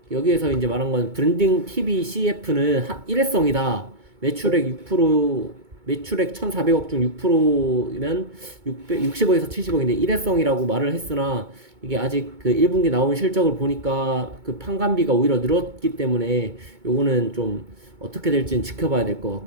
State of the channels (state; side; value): late; left; 2.2 ms